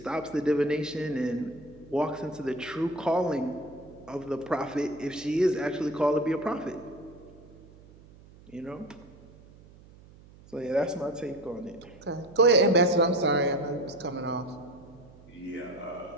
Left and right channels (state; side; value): noise; right; hum, 22 dB below the sound